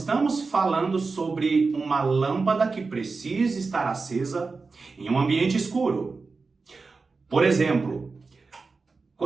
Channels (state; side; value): quieter; left; 4.3 dB